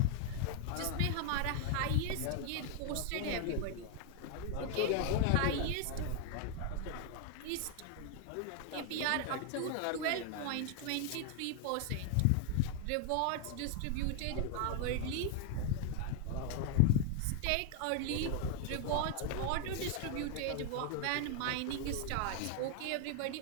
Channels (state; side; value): different; both; correlation 0.00